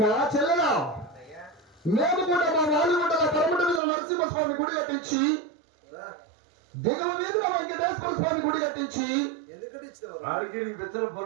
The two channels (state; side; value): drops out; left; at 3.8 s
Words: చెల్లెలా, మేము కూడా మా వాలిగుంటల పరమట మీద నరసింహస్వామి గుడి కట్టించి దిగువ మీదుగా వెంకటేశ్వర స్వామి గుడి కట్టించి